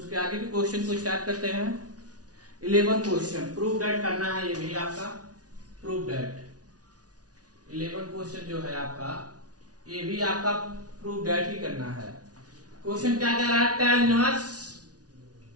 आगे के क्वेश्चन को स्टार्ट करते हैं। 11 क्वेश्चन प्रूव दैट करना है, ये भी आपका प्रूव दैट 11 क्वेश्चन जो है आपका, ये भी आपका प्रूव दैट ही करना है। क्वेश्चन क्या कह रहा है? tan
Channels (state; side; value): late; left; 0.68 ms